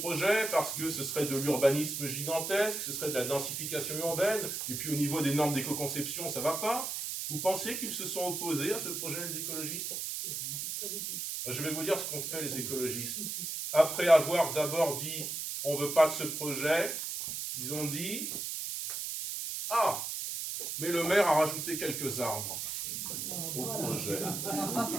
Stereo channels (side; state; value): right; noise; hiss, 4 dB below the sound